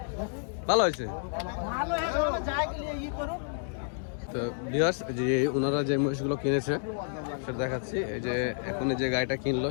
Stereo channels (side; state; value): right; silent; digital silence